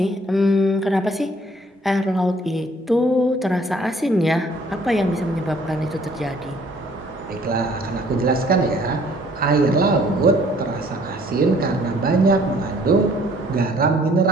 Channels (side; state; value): both; normal; correlation 0.59